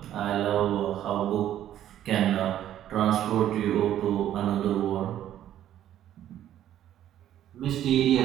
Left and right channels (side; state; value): left; quieter; 11.6 dB